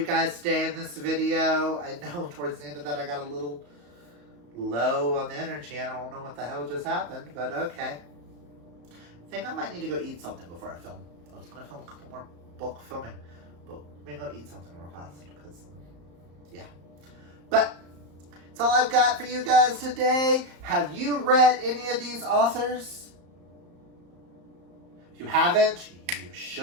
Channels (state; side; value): late; left; 34 ms